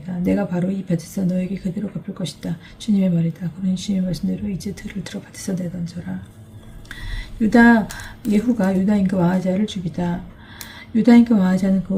내가 바로 이 밭에서 너에게 그대로 갚을 것이다. 주님의 말이다. 그러니 주님의 말씀대로 이제 들을 들어 밭에서 내던져라. 예후가 유다 임금 아하지야를 죽이다. 유다 임금 아하지야는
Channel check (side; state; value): both; identical; correlation 1.00